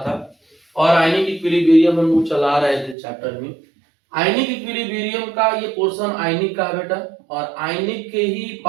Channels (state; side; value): drops out; left; at 3.0 s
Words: था और आयनिक इक्विलिब्रियम हम लोग चला रहे थे चैप्टर में। आयनिक इक्विलिब्रियम का ये पोर्शन आयनिक का है बेटा, और आयनिक के ही